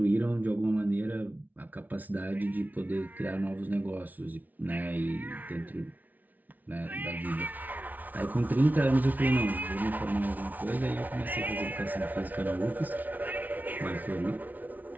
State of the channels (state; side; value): late; left; 0.078 ms